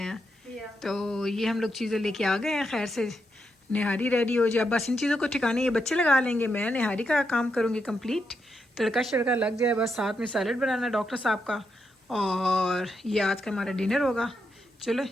Yeah. तो ये हम लोग चीज़ें लेके आ गए हैं खैर से। निहारी रेडी हो जाए, बस इन चीज़ों को ठिकाने ये बच्चे लगा लेंगे, मैं निहारी का काम करूँगी कंप्लीट, तड़का शड़का लग जाए बस, साथ में सैलड बनाना डॉक्टर साहब का, और ये आज का हमारा डिनर होगा। चलो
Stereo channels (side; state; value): both; normal; correlation 0.83